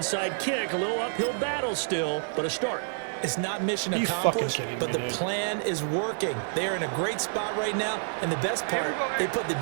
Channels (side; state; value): left; silent; digital silence